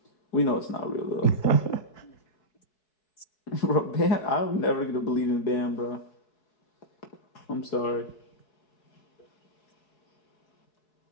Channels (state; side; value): late; right; 4.7 ms